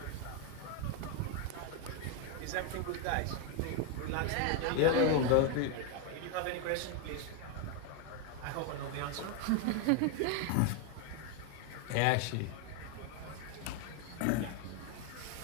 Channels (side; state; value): both; different; correlation 0.01